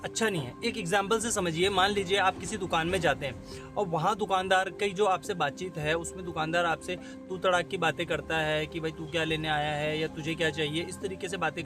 अच्छा नहीं है, एक एग्जाम्पल से समझिए, मान लीजिए आप किसी दुकान में जाते हैं और वहाँ दुकानदार की जो आपसे बातचीत है उसमें दुकानदार आपसे तू तड़ाक की बातें करता है कि भाई तू क्या लेने आया है या तुझे क्या चाहिए, इस तरीके से बातें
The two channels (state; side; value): identical; both; correlation 1.00